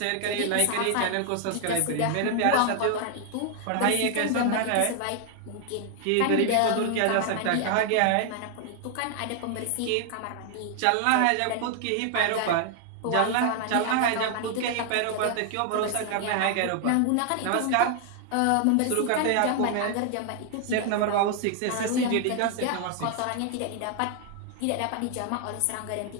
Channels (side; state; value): both; different; correlation 0.00